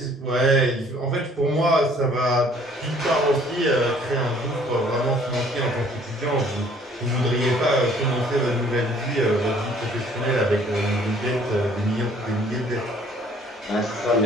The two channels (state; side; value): normal; both; correlation 0.58